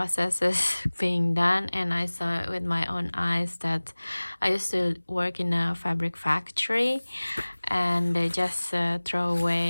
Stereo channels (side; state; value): both; inverted; correlation -1.00